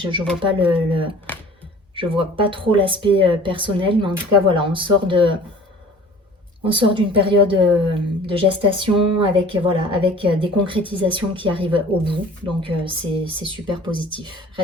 vois pas je vois pas trop l'aspect personnel, mais en tout cas voilà, on sort d'une période de gestation avec, voilà, avec des concrétisations qui arrivent au bout. Donc c'est super positif.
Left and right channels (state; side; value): normal; both; correlation 0.46